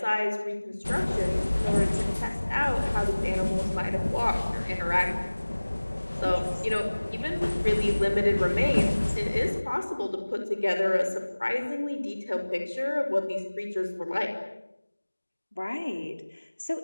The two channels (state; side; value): inverted; both; correlation -1.00